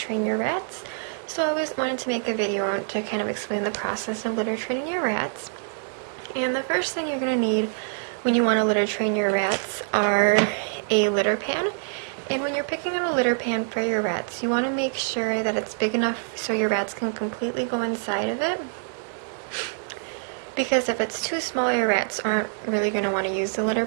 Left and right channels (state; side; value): silent; left; digital silence